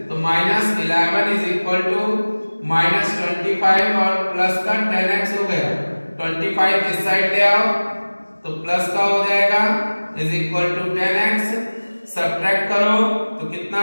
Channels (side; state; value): both; inverted; correlation -1.00